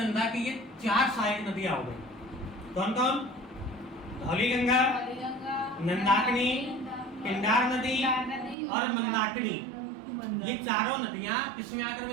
की ये 4 सहायक नदियां हो गई। कौन कौन? धौली गंगा, नंदाकिनी, पिंडार नदी और मंदाकिनी। ये चारों नदियां किसमें आकर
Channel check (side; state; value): left; drops out; at 8.6 s